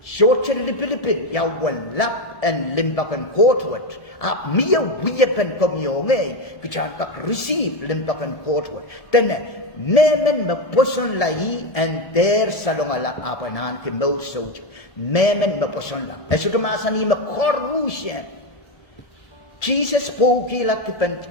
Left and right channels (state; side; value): late; right; 1.7 ms